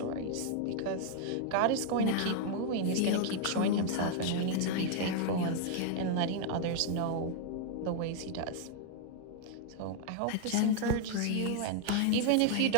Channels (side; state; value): both; different; correlation 0.00